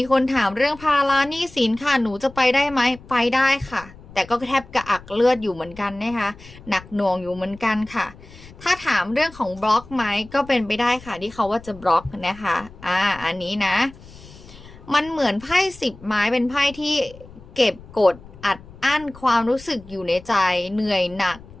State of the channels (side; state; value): left; noise; rumble, 20 dB below the sound